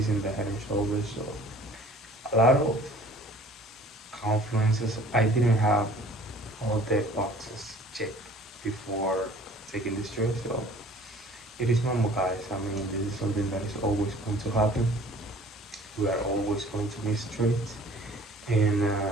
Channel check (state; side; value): normal; both; correlation 0.50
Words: the head and shoulders. So a lot of confluences. I didn't have all the boxes checked before taking this trade. So it is normal, guys. I mean, this is something that is always going to happen. We are always going to miss trades, and